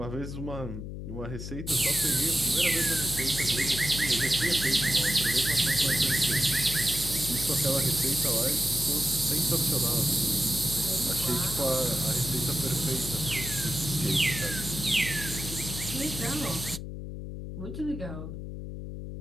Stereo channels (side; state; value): left; noise; hum, 8 dB below the sound